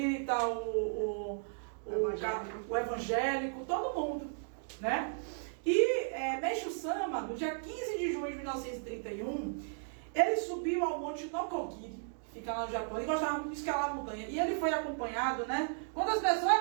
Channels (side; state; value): left; silent; digital silence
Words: o evangélico, todo mundo, né? E Meishu Sama, no dia 15 de junho de 1931, ele subiu ao monte Nokogiri, que fica lá no Japão. Ele gostava muito de escalar a montanha. E ele foi acompanhado, né? Quantas